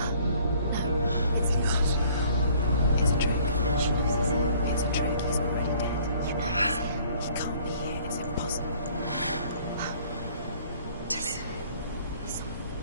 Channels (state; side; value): inverted; both; correlation -0.57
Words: it's not. It's a trick. It's a trick. He's already dead. He can't be here. It's impossible.